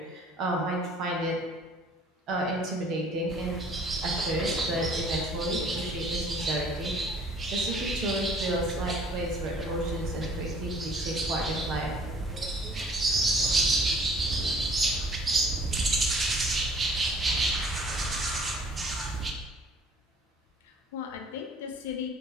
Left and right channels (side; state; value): both; normal; correlation 0.54